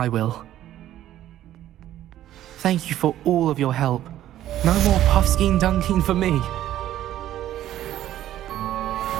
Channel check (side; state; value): left; quieter; 12.8 dB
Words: will. Thank you for all of your help. No more Puffskein Dunkeen for me.